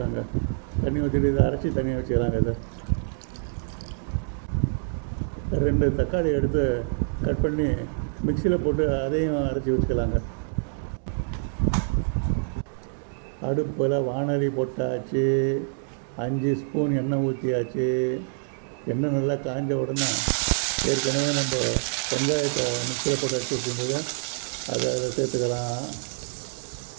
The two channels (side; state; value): left; silent; digital silence